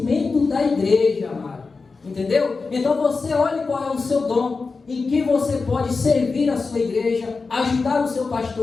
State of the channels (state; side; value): quieter; right; 4.3 dB